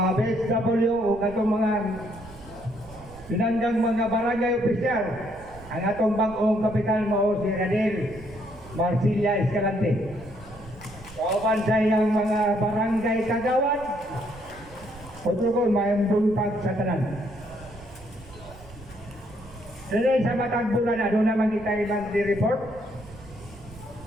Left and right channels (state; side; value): noise; right; rumble, 19 dB below the sound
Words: BSW o katong mga pinanggang mga barangay opisyal, ang atong bangkong kapitan mao si Radel Marcilia Escalante. Kaupan sa iyang mga barangay kagawad, Pagkakon, may buntag sa tanan. Dili sa matag bulan, ano naman kita ilang di-report?